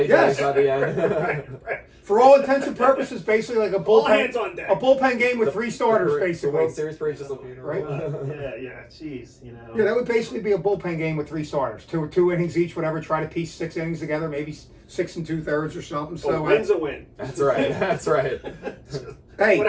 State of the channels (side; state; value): both; identical; correlation 1.00